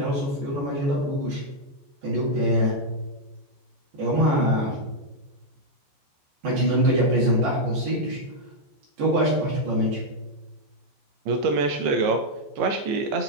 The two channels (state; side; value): late; left; 14 ms